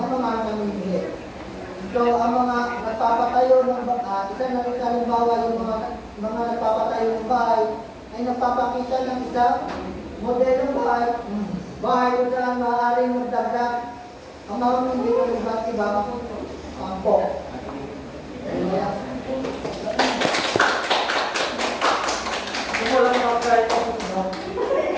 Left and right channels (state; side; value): identical; both; correlation 1.00